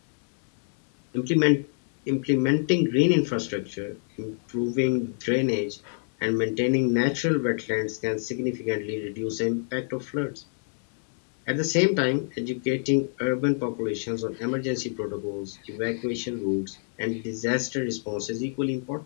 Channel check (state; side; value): silent; right; 60 dB below the other